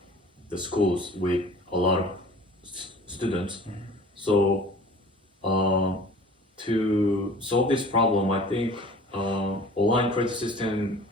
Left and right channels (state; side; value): normal; both; correlation 0.46